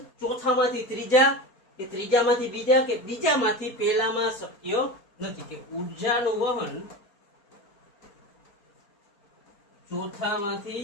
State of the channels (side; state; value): right; late; 4.2 ms